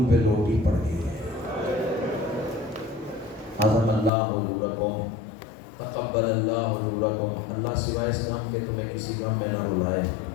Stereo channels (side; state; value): right; drops out; at 4.1 s